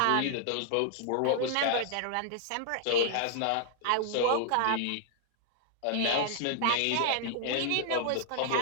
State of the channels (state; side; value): different; both; correlation 0.00